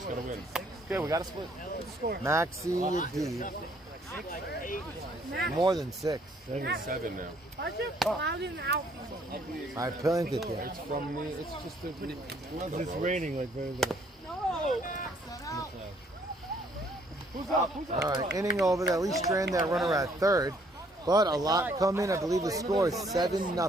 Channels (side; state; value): both; normal; correlation 0.65